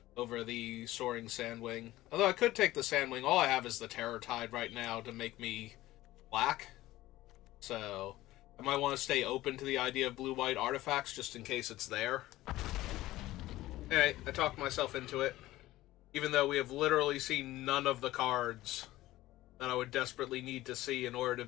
over the Soaring Sandwing. Although I could take the Sandwing. All I have is the Terror Tide right now to make me black. So I might want to stay open to the idea of blue-white artifacts just in case it's there. Alright, I talked myself into it. Even though we have literally seen none of the cards that I would desperately need to see in order to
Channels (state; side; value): quieter; right; 16.5 dB